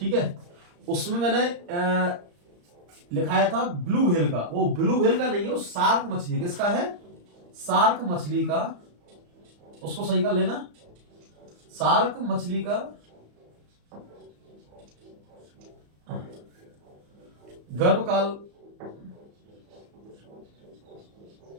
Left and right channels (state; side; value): late; left; 34 ms